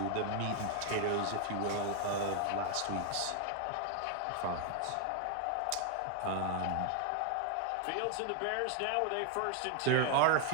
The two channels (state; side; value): different; both; correlation 0.00